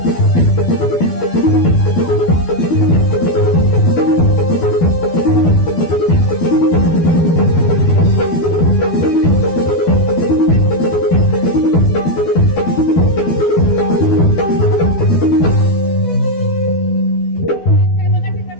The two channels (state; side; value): late; right; 12 ms